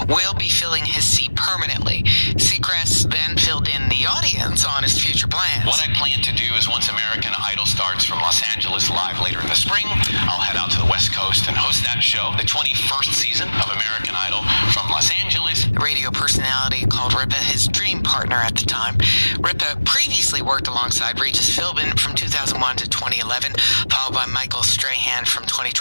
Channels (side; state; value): both; inverted; correlation -1.00